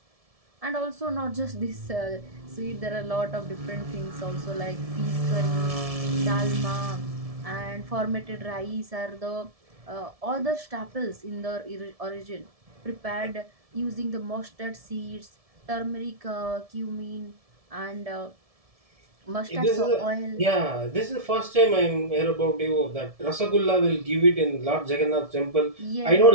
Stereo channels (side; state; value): left; late; 1.7 ms